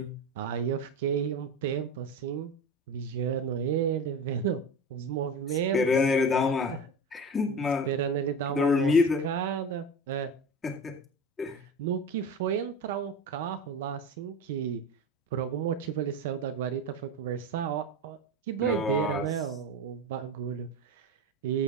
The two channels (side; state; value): both; normal; correlation 0.27